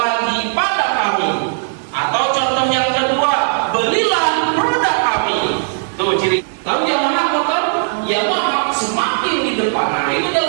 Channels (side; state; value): left; silent; 67 dB below the other